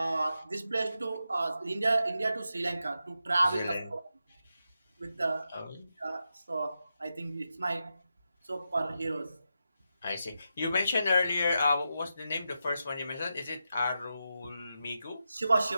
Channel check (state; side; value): inverted; both; correlation -0.88